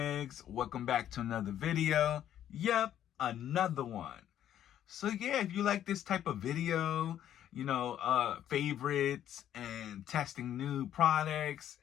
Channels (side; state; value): right; quieter; 10.9 dB